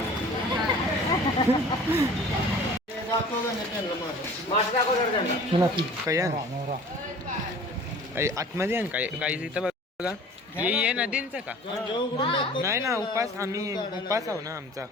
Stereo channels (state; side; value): normal; both; correlation 0.45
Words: आतमध्ये आहे काय काही इथं बघा. ये नदींचं का नाही ना. उपास आम्ही उपास आहो ना आमचा.